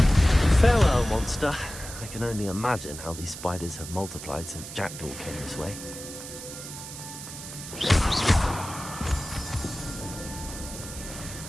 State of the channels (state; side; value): noise; right; hiss, 11 dB below the sound